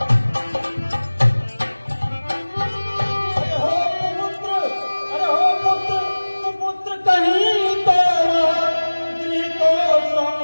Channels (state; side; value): inverted; both; correlation -1.00